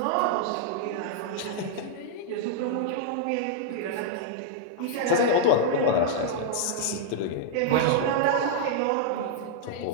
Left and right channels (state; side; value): different; both; correlation -0.02